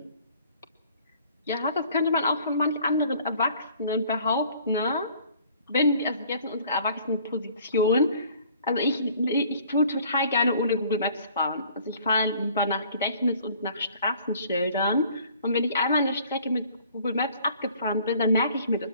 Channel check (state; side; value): inverted; both; correlation -0.55